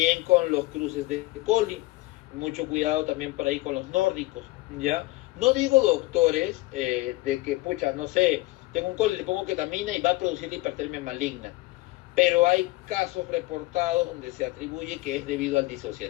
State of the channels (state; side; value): quieter; right; 20.3 dB